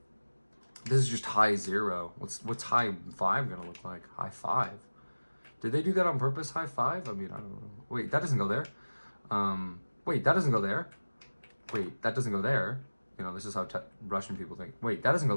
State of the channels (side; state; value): both; inverted; correlation -1.00